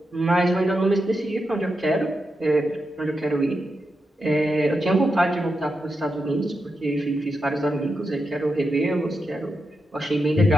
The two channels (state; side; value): normal; both; correlation 0.87